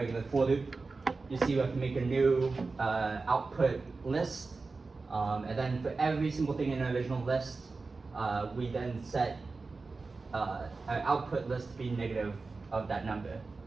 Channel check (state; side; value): quieter; left; 4.0 dB